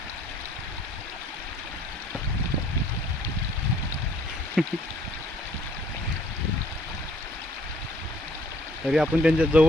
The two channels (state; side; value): normal; both; correlation 0.61